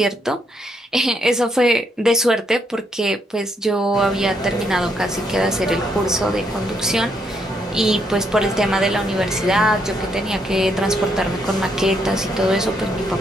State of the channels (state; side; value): normal; both; correlation 0.75